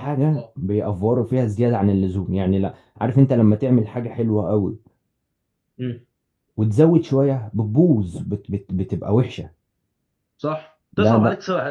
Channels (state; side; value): identical; both; correlation 1.00